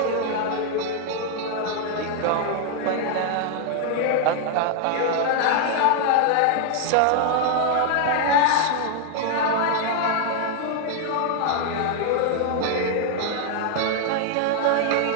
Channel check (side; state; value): both; different; correlation 0.00